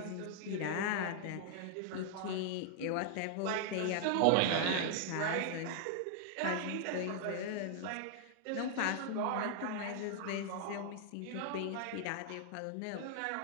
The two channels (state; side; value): different; both; correlation 0.00